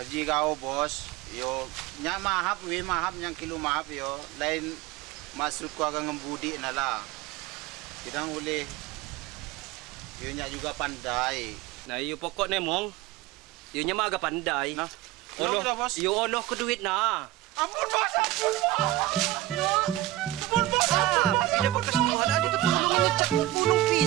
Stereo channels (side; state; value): left; quieter; 15.6 dB